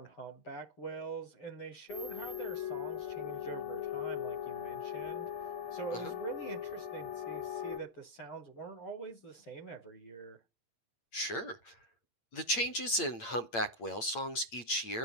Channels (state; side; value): late; right; 8.7 ms